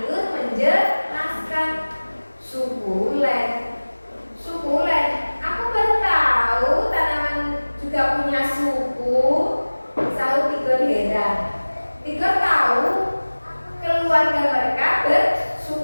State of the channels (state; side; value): inverted; both; correlation -1.00